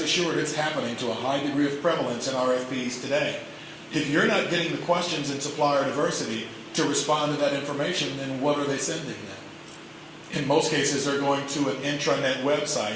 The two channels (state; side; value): identical; both; correlation 1.00